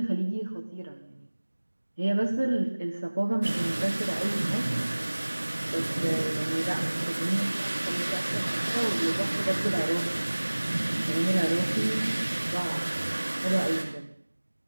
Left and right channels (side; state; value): both; inverted; correlation -1.00